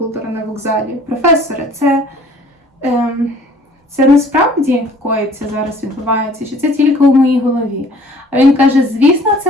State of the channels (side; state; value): both; normal; correlation 0.53